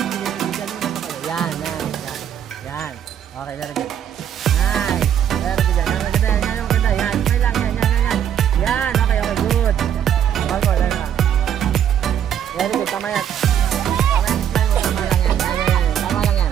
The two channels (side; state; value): left; quieter; 9.5 dB